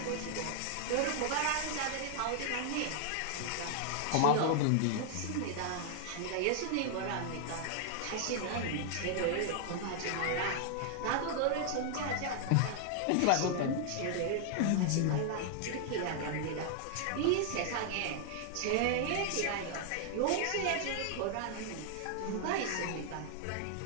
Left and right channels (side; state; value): both; different; correlation 0.00